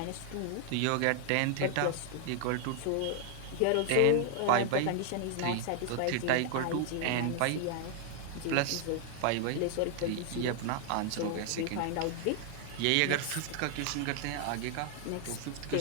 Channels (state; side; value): different; both; correlation 0.00